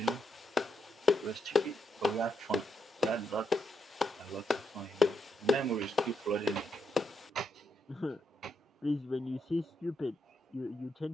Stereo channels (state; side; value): normal; both; correlation 0.81